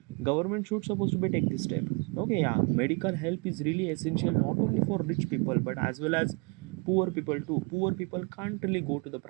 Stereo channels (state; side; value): quieter; left; 31.1 dB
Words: government should supposed to be take this step. Okay, yeah, medical help is really essential not only for rich people but as well as poor people too. Poor people can't really go to the